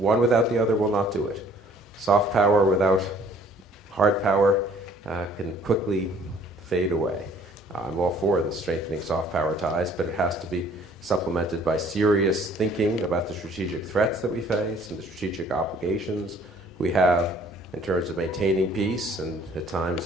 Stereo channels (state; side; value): normal; both; correlation 0.57